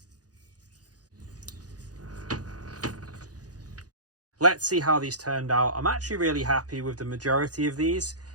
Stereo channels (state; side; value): late; left; 0.68 ms